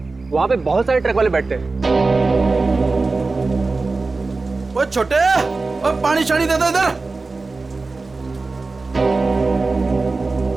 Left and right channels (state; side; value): quieter; left; 3.7 dB